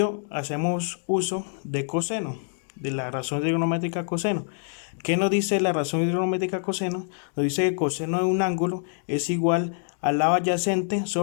hacemos uso de coseno, de la razón trigonométrica coseno. ¿Qué nos dice la razón trigonométrica coseno? Nos dice que coseno de un ángulo es igual al lado adyacente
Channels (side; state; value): right; silent; 61 dB below the other